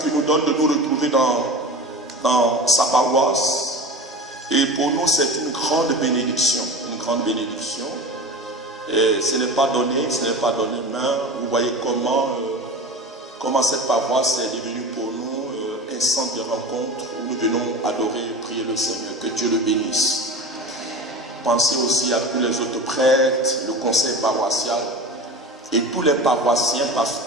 qu'il nous donne de nous retrouver dans sa paroisse. Et pour nous, c'est une grande bénédiction. Une grande bénédiction. Et ce n'est pas donné, mais vous voyez comment cette paroisse est devenue pour nous un centre de rencontre où nous venons adorer et prier le Seigneur. Que Dieu le bénisse. Pensez aussi à tous les autres prêtres, le conseil paroissial et tous les paroissiens, parce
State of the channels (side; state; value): both; normal; correlation 0.32